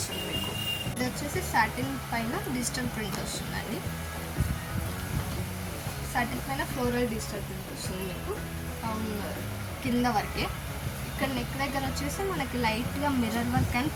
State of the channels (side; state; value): both; identical; correlation 1.00